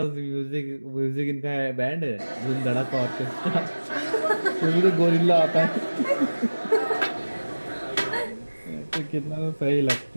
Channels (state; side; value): inverted; both; correlation -1.00